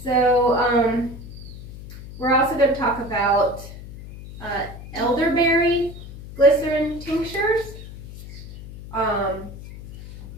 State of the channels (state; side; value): noise; left; hum, 14 dB below the sound